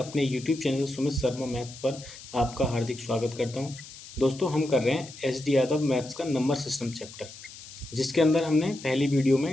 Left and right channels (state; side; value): noise; left; hiss, 16 dB below the sound